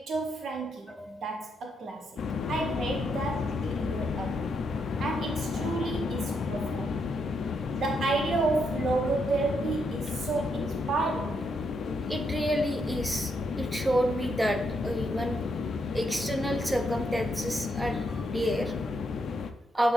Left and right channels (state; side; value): normal; both; correlation 0.78